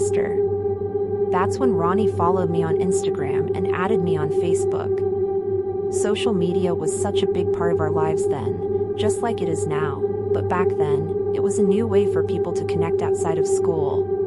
That's when Ronnie followed me on Instagram and added me on Facebook. Social media was such a big part of our lives then, just like it is now, but back then, it was a new way for people to connect outside of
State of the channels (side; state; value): both; identical; correlation 1.00